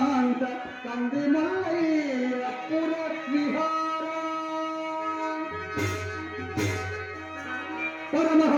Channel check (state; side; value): identical; both; correlation 1.00